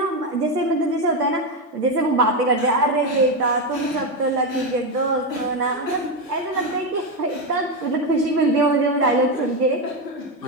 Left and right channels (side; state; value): both; normal; correlation 0.10